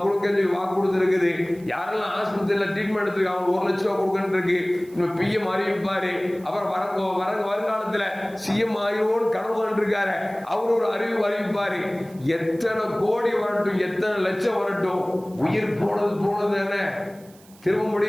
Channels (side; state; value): right; noise; hiss, 26 dB below the sound